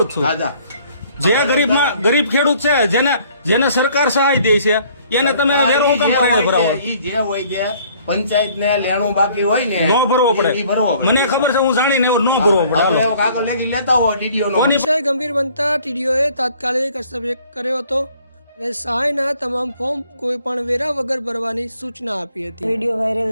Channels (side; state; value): both; inverted; correlation -0.58